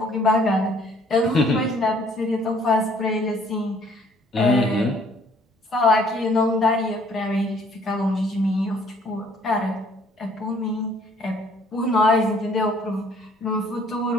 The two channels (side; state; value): both; normal; correlation 0.60